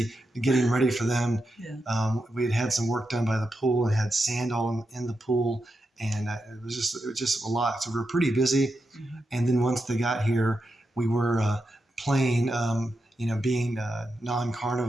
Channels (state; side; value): normal; both; correlation 0.87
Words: getting ready for them. Yeah. We had some work done by the pool and had sand all in the pool, and it was just a lot. So we were pretty busy. Mm-hmm. And then once they got here, we were playing. Being